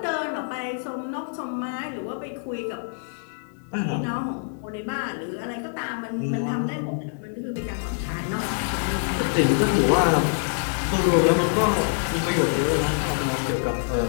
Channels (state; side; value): silent; right; digital silence